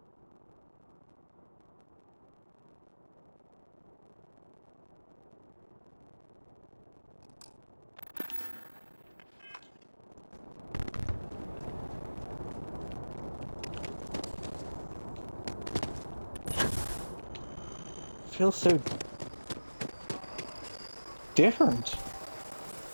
Feels so different.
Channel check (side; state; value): both; inverted; correlation -1.00